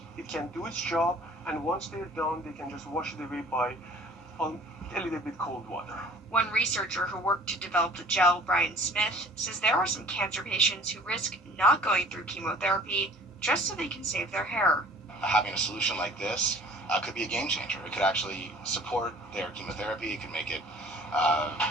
It can do its job, and once they're done, they can just wash it away by a little bit cold water. One researcher who worked to develop the gel, Brian Smith, says there are some cancer patients who risk not going through chemotherapy just so they can save their hair. Having a solution like this could be a game changer. It could actually support their chemotherapy. It could make it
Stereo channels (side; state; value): both; normal; correlation 0.50